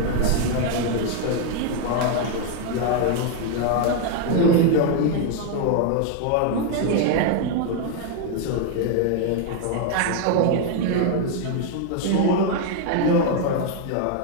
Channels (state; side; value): different; both; correlation 0.00